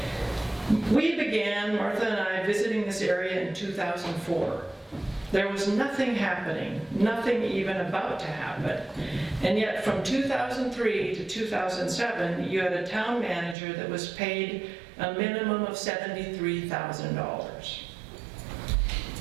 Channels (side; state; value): left; drops out; at 13.6 s